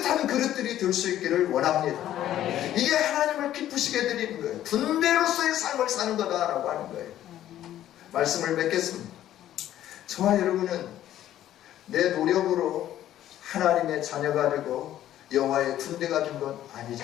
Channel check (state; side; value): quieter; right; 12.4 dB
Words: 그릇들이 될 수 있기를 원합니다. 이게 하나님을 기쁘시게 드리는 거예요. 분배로서의 삶을 사는 거다라고 하는 거예요. 말씀을 맺겠습니다. 저와 여러분은 내 노력으로 하나님의 자녀가 되고 여호와의 군대가 된 건